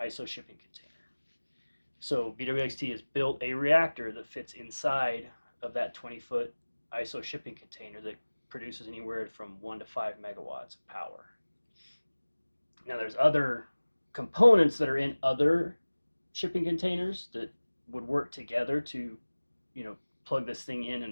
ISO shipping container. So BWXT has built a reactor that fits inside of that 20-foot ISO shipping container that produces anywhere from 1 to 5 megawatts of power. Now there's other components that are in other shipping containers that would work together to, plug this thing in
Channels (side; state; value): both; inverted; correlation -1.00